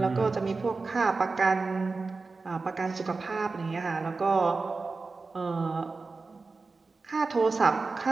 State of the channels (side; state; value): left; quieter; 4.0 dB